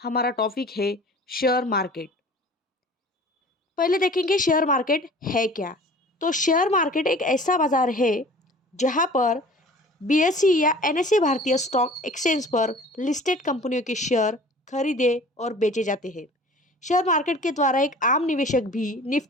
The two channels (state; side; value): normal; both; correlation 0.45